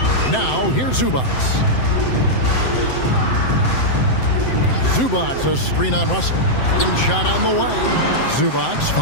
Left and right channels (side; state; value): right; late; 7.8 ms